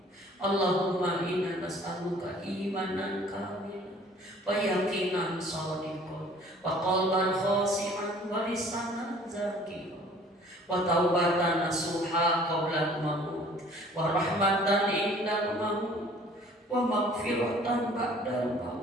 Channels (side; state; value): both; normal; correlation 0.52